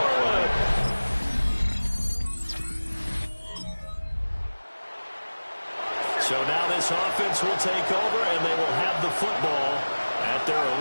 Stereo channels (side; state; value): both; inverted; correlation -1.00